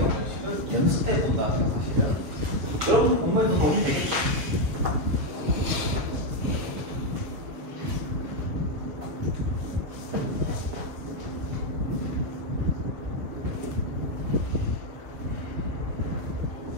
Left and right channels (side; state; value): left; late; 6.9 ms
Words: 형식을 연습해 본다 생각하시면 여러분 공부에도 도움이 되겠죠.